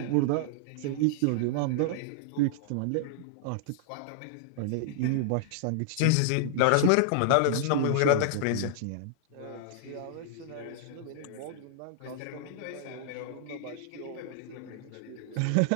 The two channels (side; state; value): both; different; correlation -0.01